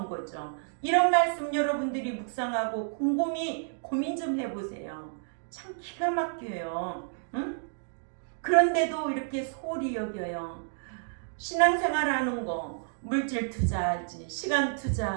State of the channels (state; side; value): silent; left; digital silence